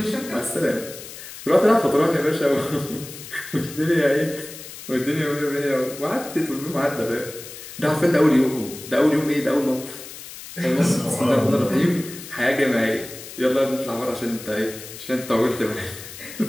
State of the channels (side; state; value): left; noise; hiss, 14 dB below the sound